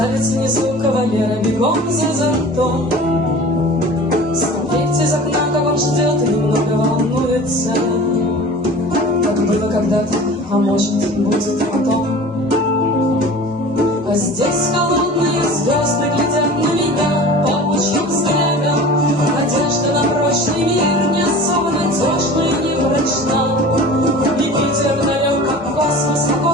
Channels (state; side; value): normal; both; correlation 0.40